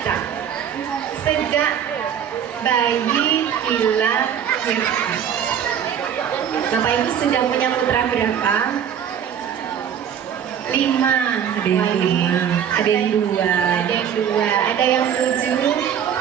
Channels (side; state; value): left; quieter; 8.7 dB